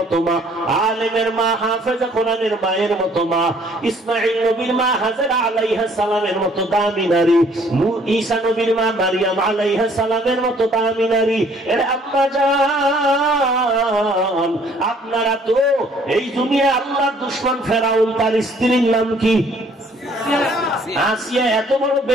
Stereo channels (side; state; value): both; normal; correlation 0.60